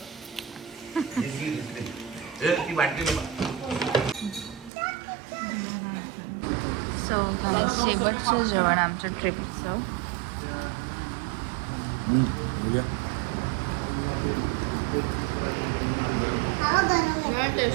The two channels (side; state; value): left; drops out; at 4.7 s